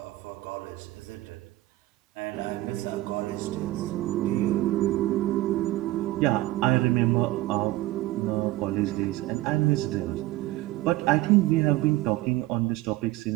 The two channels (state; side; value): quieter; left; 17.6 dB